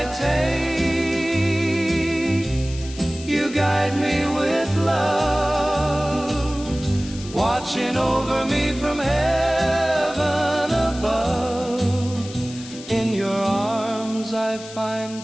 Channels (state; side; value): noise; left; hiss, 16 dB below the sound